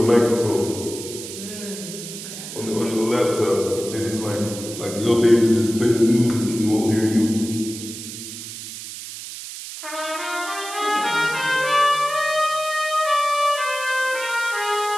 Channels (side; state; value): right; noise; hiss, 10 dB below the sound